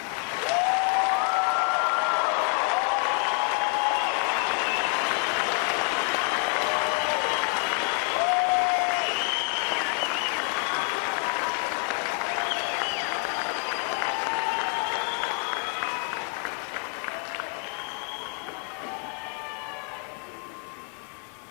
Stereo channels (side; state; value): right; quieter; 38.2 dB